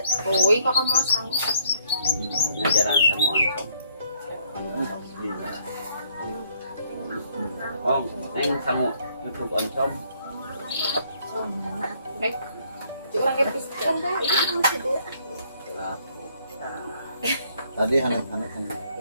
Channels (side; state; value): both; inverted; correlation -0.66